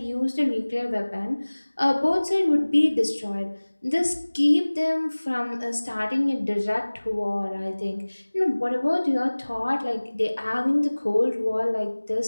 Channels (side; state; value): both; inverted; correlation -1.00